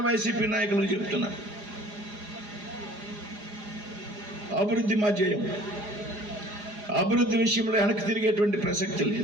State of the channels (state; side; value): late; left; 4.9 ms